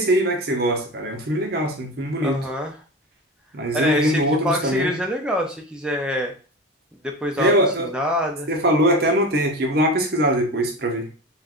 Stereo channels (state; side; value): normal; both; correlation 0.29